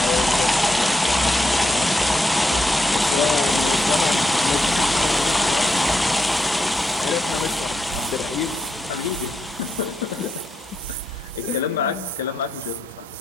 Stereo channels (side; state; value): both; normal; correlation 0.82